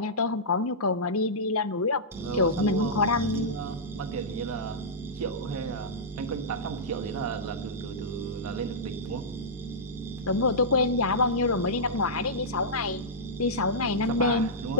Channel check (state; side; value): normal; both; correlation -0.13